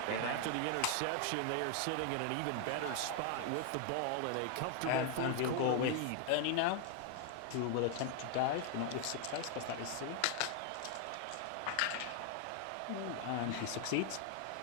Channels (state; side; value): different; both; correlation 0.00